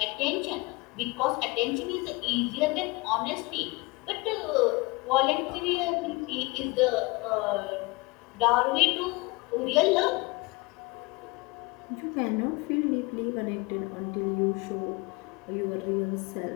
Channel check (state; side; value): quieter; right; 24.9 dB